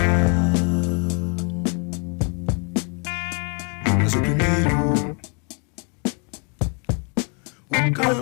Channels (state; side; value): quieter; right; 36.8 dB